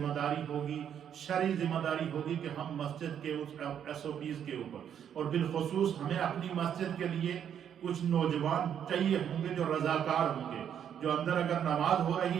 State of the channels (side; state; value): left; quieter; 8.9 dB